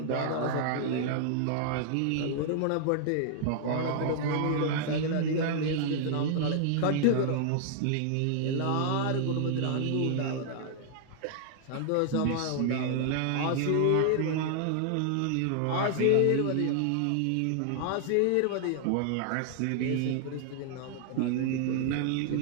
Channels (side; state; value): both; different; correlation -0.01